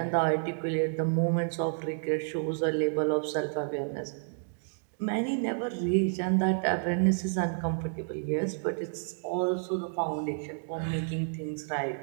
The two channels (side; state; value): left; silent; digital silence